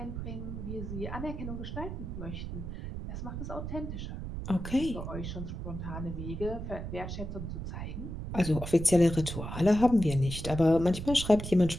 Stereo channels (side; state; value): right; noise; rumble, 6 dB below the sound